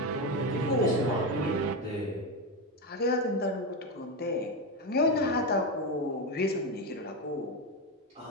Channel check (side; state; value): both; normal; correlation 0.13